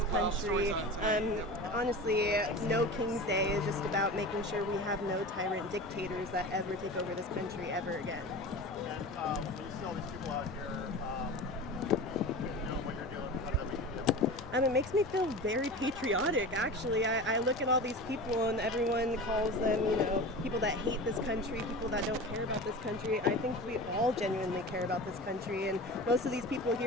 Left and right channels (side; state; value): both; normal; correlation 0.32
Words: country. Honestly, No King's Day is just about making sure we have no tyrant dictators that ever take over this country ever again. And when you see all these people out here doing what you're doing, how does that make you feel? It makes me feel very patriotic, actually. I look at all these people and everyone calls them, people that hate this country, people that don't care about this country. I think we all genuinely care about this country, and most of these people